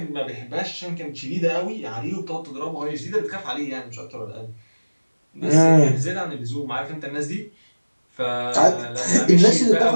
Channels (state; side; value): inverted; both; correlation -1.00